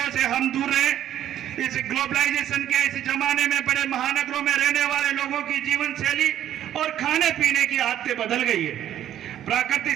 से हम दूर रहें। इस ग्लोबलाइजेशन के इस जमाने में बड़े महानगरों में रहने वाले लोगों की जीवन शैली और खाने पीने की आदतें बदल गई है। प्रकृति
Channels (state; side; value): quieter; left; 11.4 dB